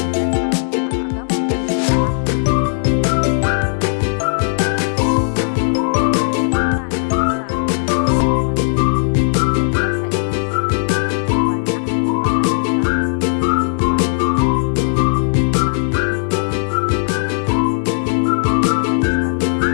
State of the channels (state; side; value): silent; right; digital silence